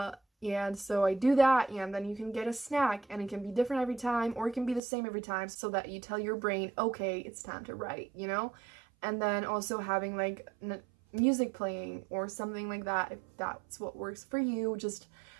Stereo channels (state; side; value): drops out; left; at 4.8 s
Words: And so I do that, and then you can get a snack, and it can be different every time, or it can be the same every time, so that you tell your brain, okay, it's time to write, you know? And then also having like music playing or something like that, if that's what works for you. Just